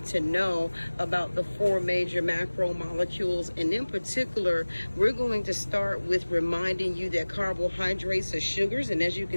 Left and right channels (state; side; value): inverted; both; correlation -1.00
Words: to know about the 4 major macromolecules. And in particular, we're going to start with reminding you that carbohydrates are sugars, and as you